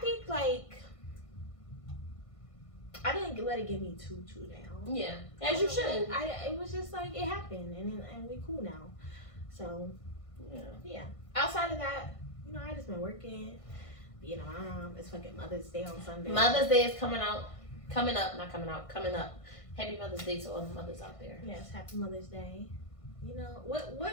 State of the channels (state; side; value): late; right; 1.5 ms